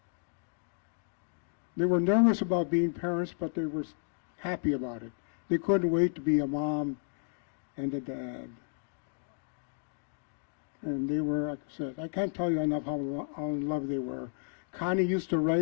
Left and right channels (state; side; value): silent; right; 56 dB below the other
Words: They were nervous about being parents, but they were happy about it. They couldn't wait to be a mom and a dad. And they were, like I said, I can't tell you enough how in love they were. Connie used to